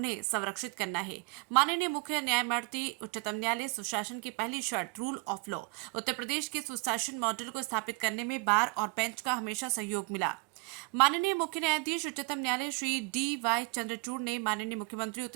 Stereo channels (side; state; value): left; quieter; 28.8 dB